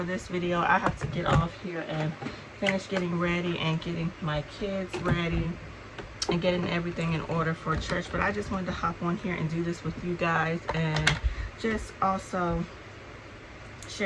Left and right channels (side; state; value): both; identical; correlation 1.00